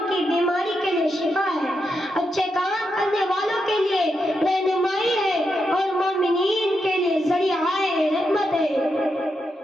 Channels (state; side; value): normal; both; correlation 0.84